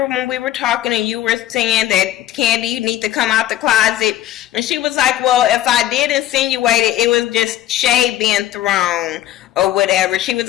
when we were talking and you were saying that, Candy, you need to come out the closet? And she was like, well, if I did insinuate it, it was just shade being thrown or whatever. She was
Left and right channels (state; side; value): quieter; right; 13.1 dB